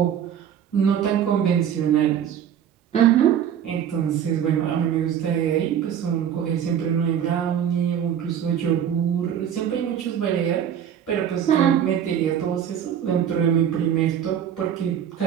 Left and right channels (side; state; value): left; quieter; 9.1 dB